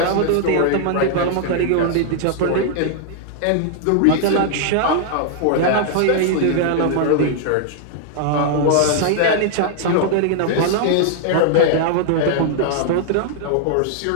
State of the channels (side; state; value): both; different; correlation -0.01